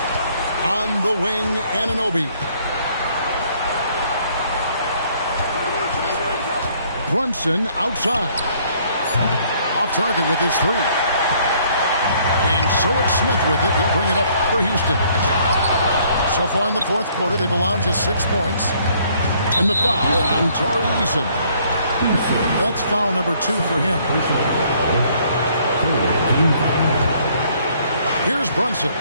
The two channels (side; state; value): both; inverted; correlation -0.63